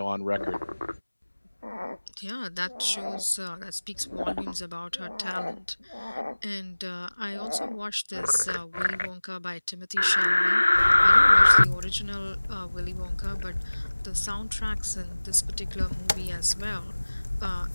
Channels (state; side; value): inverted; both; correlation -1.00